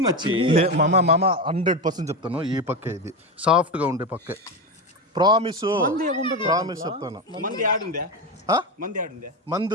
మచ్చి మామ 100% చెప్తాను ఈ పక్కే ఇది సాఫ్ట్ గా ఉండే పక్కే ప్రామిస్ చెప్తాను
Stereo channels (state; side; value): normal; both; correlation 0.16